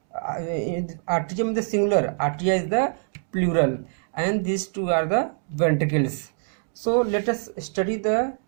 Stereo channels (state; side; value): silent; left; 62 dB below the other